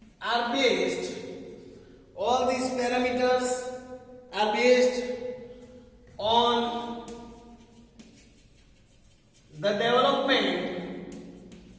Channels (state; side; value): identical; both; correlation 1.00